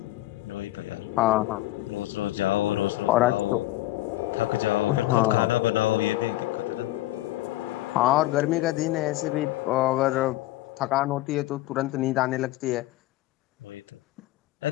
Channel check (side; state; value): right; quieter; 16.7 dB